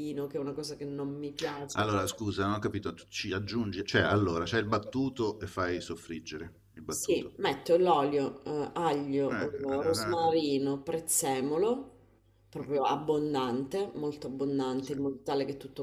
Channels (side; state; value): both; identical; correlation 1.00